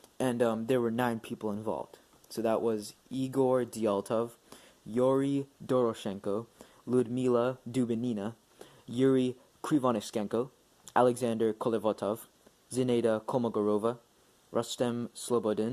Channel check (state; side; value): identical; both; correlation 1.00